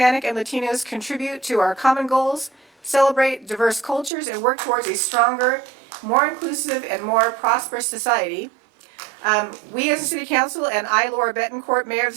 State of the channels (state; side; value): drops out; left; at 4.1 s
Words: and Latinos contribute to our common goals, celebrate diverse cultures, and work towards a stronger, more inclusive, and more prosperous society. We as a city council and I, Laura Betancourt, Mayor of